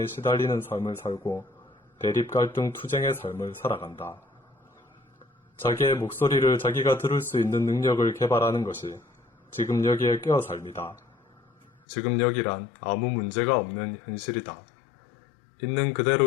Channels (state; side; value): drops out; right; at 11.7 s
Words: 시달리는 삶을 살고 대립갈등 투쟁의 삶을 살아간다. 자기의 목소리를 자기가 들을 수 있는 능력을 개발하는 것이 지금 여기에 깨어 삶이다. 지금 여기란 아무 문제가 없는 현실이다. 있는